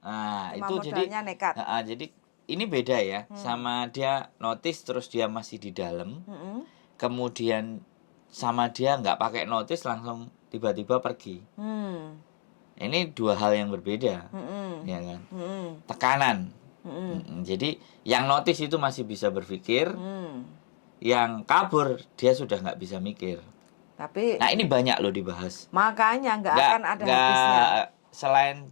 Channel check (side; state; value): right; silent; 59 dB below the other